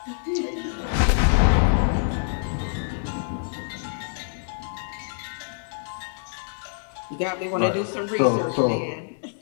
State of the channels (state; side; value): silent; right; 61 dB below the other